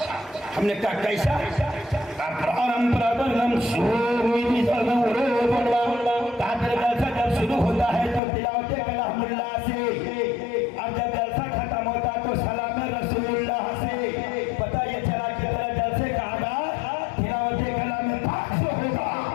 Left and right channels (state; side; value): drops out; right; at 8.2 s